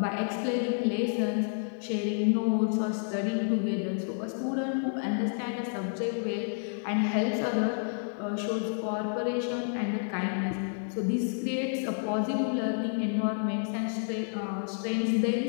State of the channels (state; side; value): silent; right; digital silence